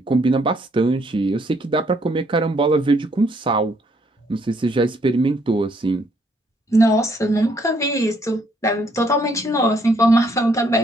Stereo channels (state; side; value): normal; both; correlation 0.69